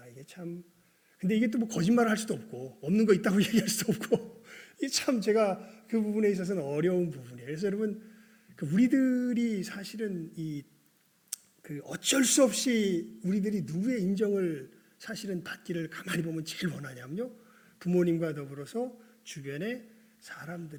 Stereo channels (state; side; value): identical; both; correlation 1.00